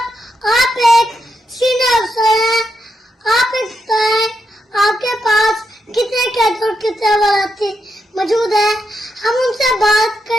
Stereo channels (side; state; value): both; normal; correlation 0.83